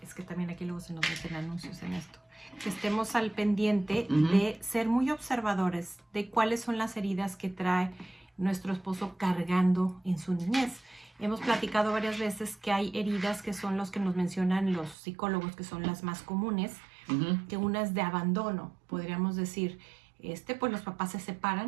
es que también aquí luego se nos meten anuncios en esto, que estemos al pendiente de ser muy observadores de cuáles son las heridas que trae nuestro esposo cargando en su niñez. Hemos platicado varias veces que hay heridas que son los que nos mencionan los psicólogos, que son las más comunes, que una es de abandono, podríamos decir, pues los papás se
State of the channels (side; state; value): left; drops out; at 15.0 s